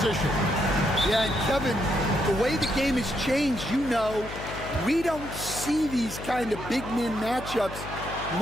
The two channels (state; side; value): noise; left; hum, 11 dB below the sound